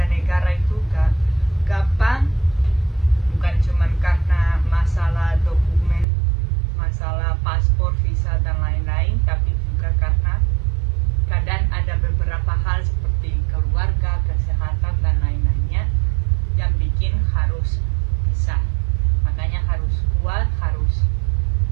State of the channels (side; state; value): left; drops out; at 6.1 s